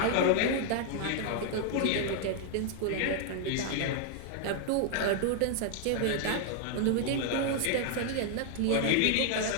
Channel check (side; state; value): both; different; correlation 0.00